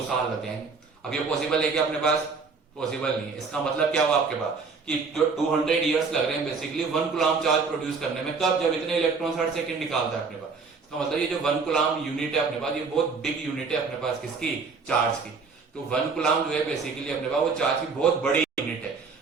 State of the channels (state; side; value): quieter; left; 4.8 dB